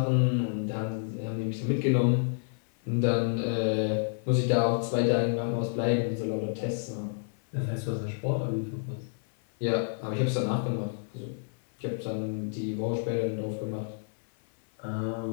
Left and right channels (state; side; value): silent; right; 58 dB below the other